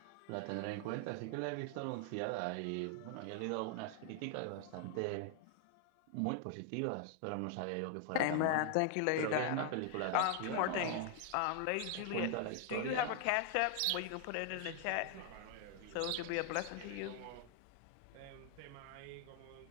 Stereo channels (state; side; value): different; both; correlation 0.00